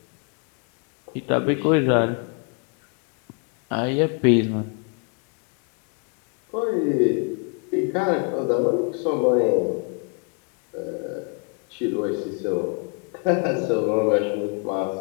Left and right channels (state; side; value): quieter; right; 38.0 dB